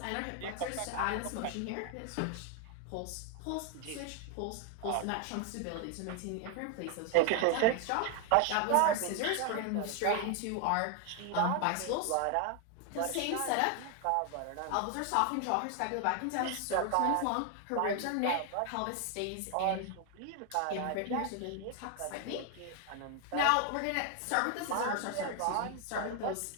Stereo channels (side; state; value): both; different; correlation 0.00